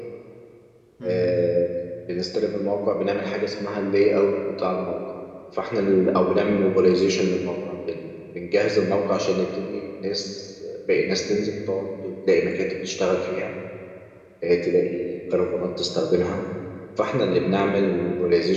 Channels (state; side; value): identical; both; correlation 1.00